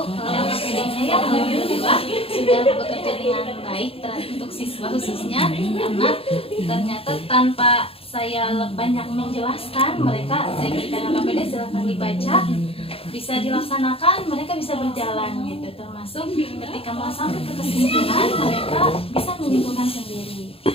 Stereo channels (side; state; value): right; late; 0.27 ms